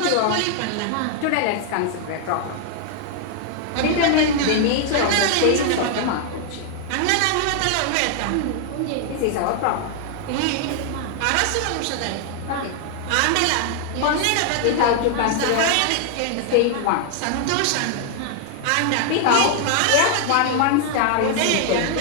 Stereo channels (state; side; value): different; both; correlation 0.00